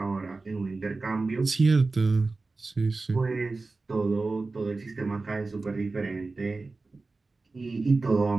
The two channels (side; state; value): left; quieter; 3.7 dB